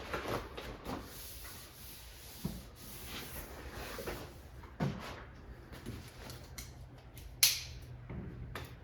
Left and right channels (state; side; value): identical; both; correlation 1.00